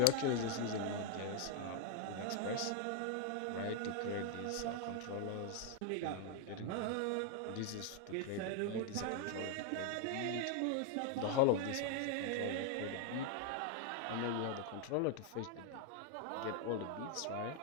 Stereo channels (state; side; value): different; both; correlation 0.00